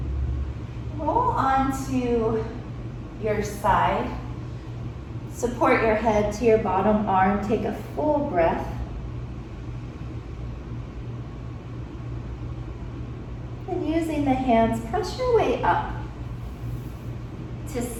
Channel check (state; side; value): identical; both; correlation 1.00